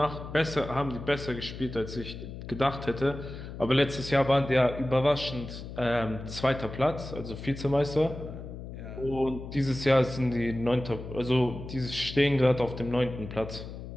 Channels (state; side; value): noise; left; hum, 10 dB below the sound